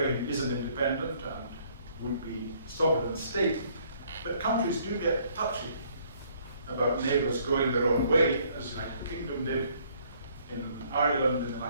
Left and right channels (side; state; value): both; inverted; correlation -0.63